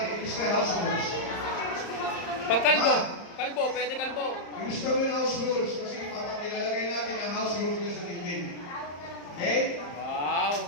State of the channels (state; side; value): late; right; 34 ms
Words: Ilis kaya house rules. Pag kalbo, kalbo, pwede kalbo. Ilis kami ng house rules kasi papakilalagay natin ang house rules na sa LinkedIn. Okay? Wow!